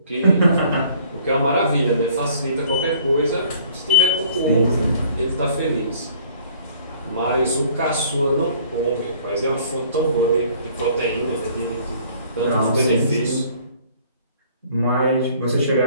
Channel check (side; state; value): both; inverted; correlation -0.56